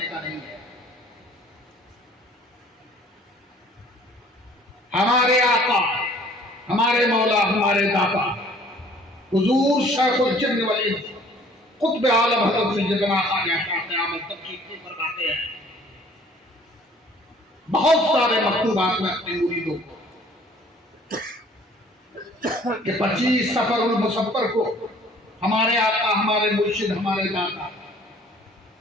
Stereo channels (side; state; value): both; normal; correlation 0.54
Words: का नहीं है। हमारे आका, हमारे मौला, हमारे दाता हुजूर शेखुल जिन्न वल इंस कुतुब आलम हज़रत सैयदना ख्वाजा क़यामत तक की फरमाते हैं, बहुत सारे मकतूबात में अपने मुरीदों को कि 25 सफरुल मुसफ्फर को हमारे आका, हमारे मुर्शिद, हमारे दाता